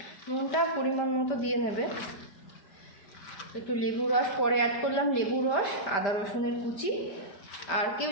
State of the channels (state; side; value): late; right; 5.1 ms